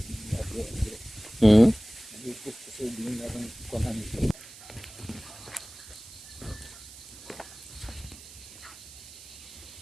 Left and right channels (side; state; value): right; noise; hiss, 17 dB below the sound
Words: Hmm. Nagigit kasi hindi na rin kunan.